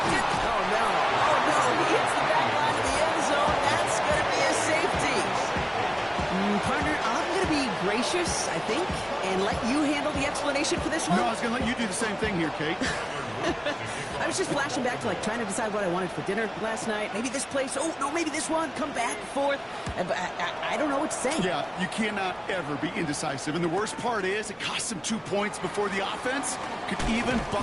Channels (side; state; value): both; identical; correlation 1.00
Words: Oh, no. He hits the back line of the end zone. That's going to be a safety. Partner, I'm going to be gracious, I think, and let you handle the explanation for this one. No, I was going to let you do the same thing here, Kate. I was just flashing back to, trying to decide what I wanted for dinner last night. Maybe this place. Oh, no, maybe this one. Come back and forth. I don't know what to say. Yeah, you cannot ever be indecisive. And the worst part is it costs them 2 points before the offense could even